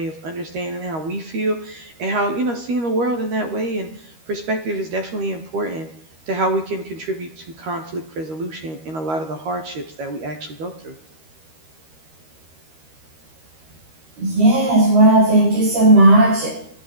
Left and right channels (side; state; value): left; late; 13 ms